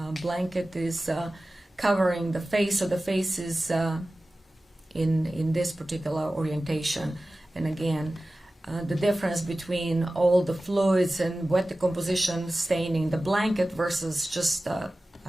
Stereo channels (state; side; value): normal; both; correlation 0.96